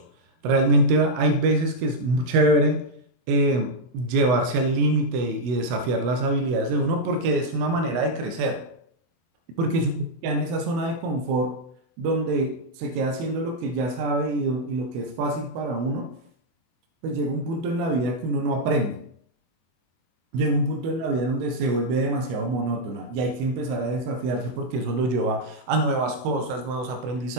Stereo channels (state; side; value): late; left; 24 ms